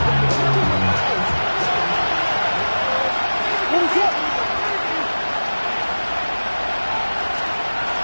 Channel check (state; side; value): inverted; both; correlation -1.00